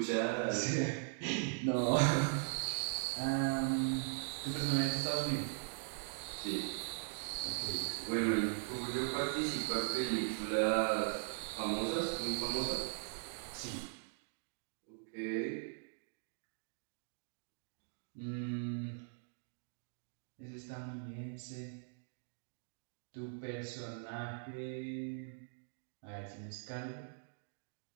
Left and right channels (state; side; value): silent; left; digital silence